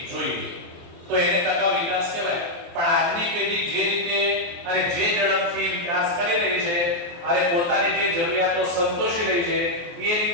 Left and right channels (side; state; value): left; late; 23 ms